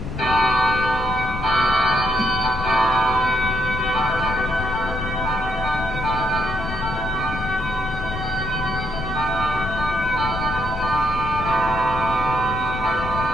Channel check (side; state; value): left; noise; rumble, 7 dB below the sound